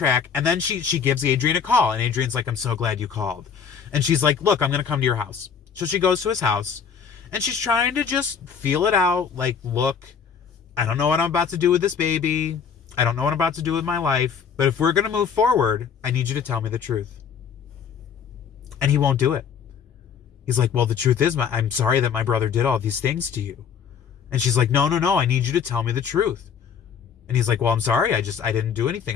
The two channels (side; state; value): right; quieter; 7.0 dB